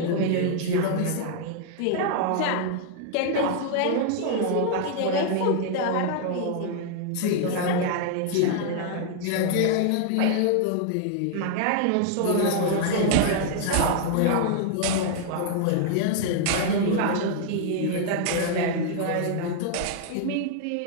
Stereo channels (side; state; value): both; different; correlation 0.00